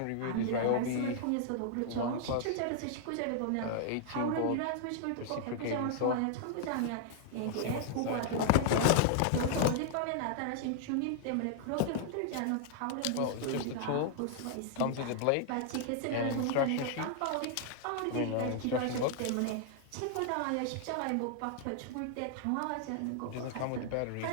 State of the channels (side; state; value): both; different; correlation -0.01